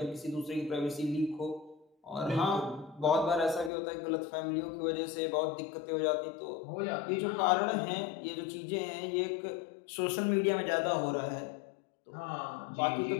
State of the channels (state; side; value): drops out; right; at 3.7 s